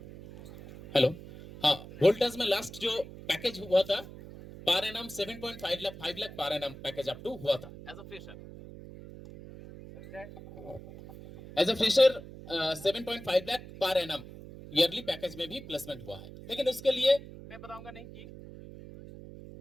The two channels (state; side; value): noise; right; hum, 15 dB below the sound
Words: हेलो, हाँ, वोल्टास में लास्ट जो पैकेज हुआ था per annum 7.5 lakh, 5 lakh per annum package up to हुआ था as a fresher. As a fresher 7.5 lakh per annum yearly package में भी प्लेसमेंट हुआ है। लेकिन उसके लिए मैं बताऊंगा नहीं कि,